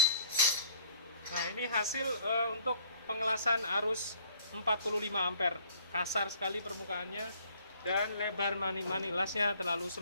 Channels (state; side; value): inverted; both; correlation -0.58